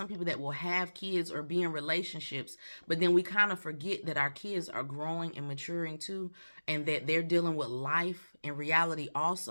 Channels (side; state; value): both; inverted; correlation -1.00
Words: people that will have kids or be in relationships, but then we kind of forget that our kids are growing and maturing too, and that they're dealing with life in reality